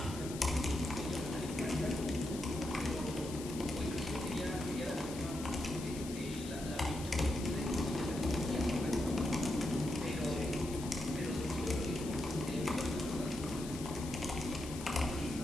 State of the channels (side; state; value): left; noise; hiss, 12 dB below the sound